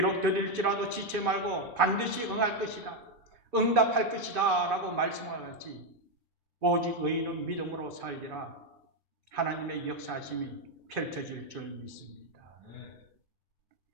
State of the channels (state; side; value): normal; both; correlation 0.04